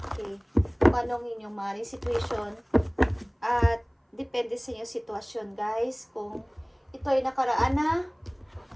Okay. Kung anong inyong maring situation. At depende sa inyong sitwasyon, guys. Kung ito ay nakaraan na,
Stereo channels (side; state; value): both; identical; correlation 1.00